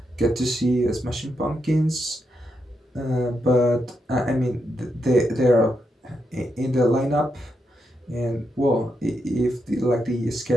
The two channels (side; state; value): both; normal; correlation 0.83